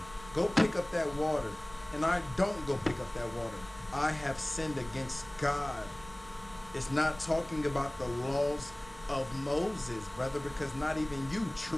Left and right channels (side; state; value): right; noise; rumble, 21 dB below the sound